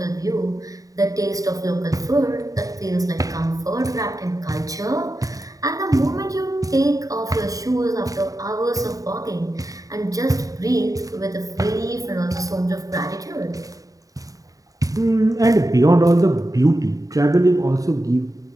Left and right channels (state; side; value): late; left; 0.17 ms